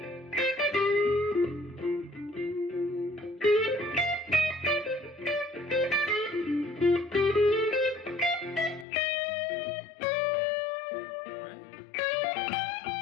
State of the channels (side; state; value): right; drops out; at 8.8 s